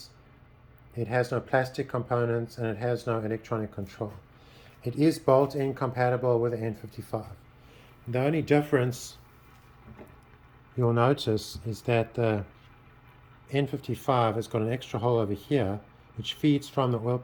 It has no plastic components and it has no electronic control. It is bolt-in compatible with the N55. The only difference you'll notice is that the N55 has got an extra hole over here which feeds from the oil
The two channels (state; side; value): identical; both; correlation 1.00